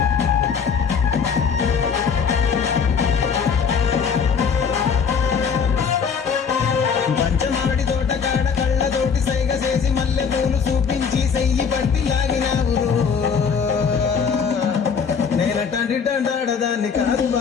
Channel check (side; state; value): right; quieter; 6.2 dB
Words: పంచమాడి తోటకాడ కళ్ళతోటి సైగ చేసి మల్లె పూలు చూపించి సెయ్యి పట్టి లాగినావు నేనటంటి దండాడదాన్ని కాదు